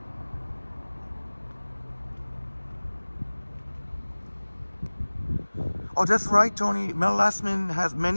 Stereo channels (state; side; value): inverted; both; correlation -1.00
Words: Oh, that's right, Tony. Mel Lastman has